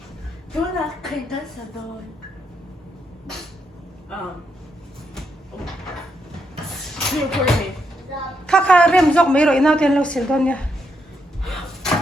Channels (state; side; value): normal; both; correlation 0.80